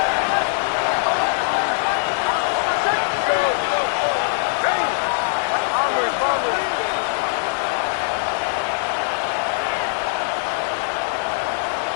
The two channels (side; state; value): right; silent; 57 dB below the other